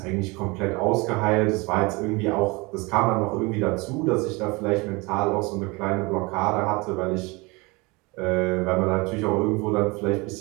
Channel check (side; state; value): left; quieter; 25.6 dB